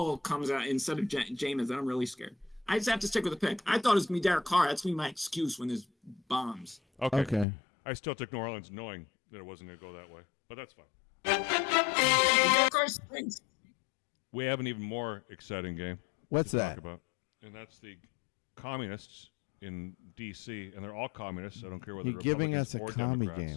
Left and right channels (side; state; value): right; drops out; at 7.5 s